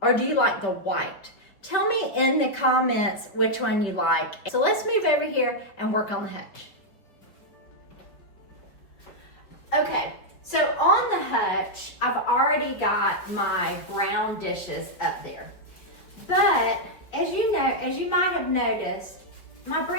or do you like the white? Tell me in the comments which one you like. So let's move over here and work on the hutch. Okay, so on the hutch, I've already got my brown dishes up there. But as you know, as you might have noticed, my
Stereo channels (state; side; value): late; right; 5.4 ms